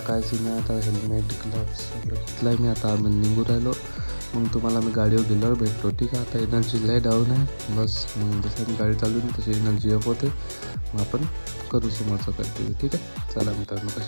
काय सीन आहे. आता हेल्मेट ग्लव्स सगळं घेतलं आहे मी. आता आम्ही निघू राहिलो. मग तुम्हाला मी गाडीवर गेल्यावर भेटतो, ठीक आहे. आता एनर्जी लय डाऊन आहे बस. मग जसं मी गाडी चालवून तशी एनर्जी अप होते. मग आपण करू समोरचं कंटिन्यू, ठीक आहे. चला मित्रांनो,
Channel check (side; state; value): both; inverted; correlation -1.00